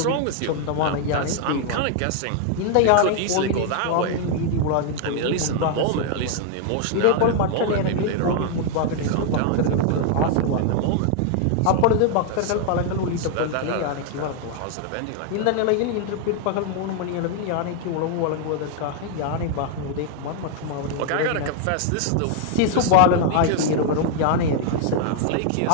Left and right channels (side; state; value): both; different; correlation 0.00